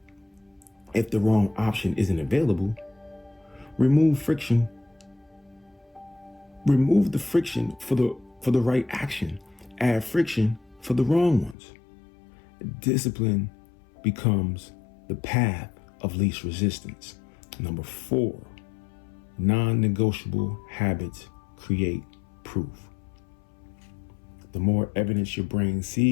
if the wrong option isn't available. Remove friction. Remove the friction for the right action. Add friction for the wrong ones. Discipline becomes the path of least resistance. 4, non-negotiable habits create proof. The more evidence your brain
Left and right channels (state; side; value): drops out; right; at 11.6 s